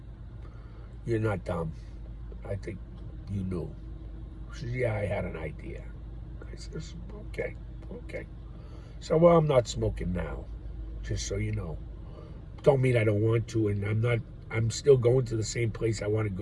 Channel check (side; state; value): both; identical; correlation 1.00